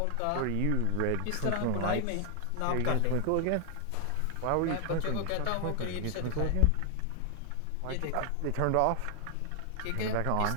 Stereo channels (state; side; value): different; both; correlation 0.00